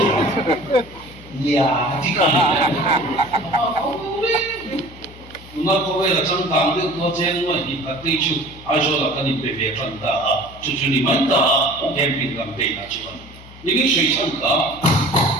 thì nó có vẻ là trong tàng được nó chen mà đi phát đi chú ai cho là cái gì về việc phân ta chú đi mạnh ta em bị làm bể là chú những cái suy nghĩ cả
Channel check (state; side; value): noise; left; hum, 19 dB below the sound